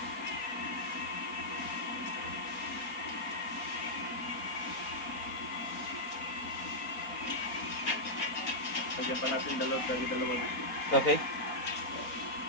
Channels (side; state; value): right; late; 4.2 ms